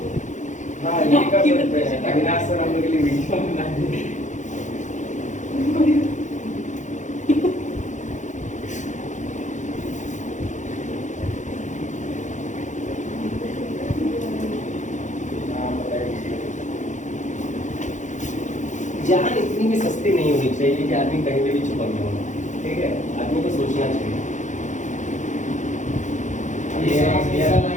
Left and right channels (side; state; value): right; late; 0.35 ms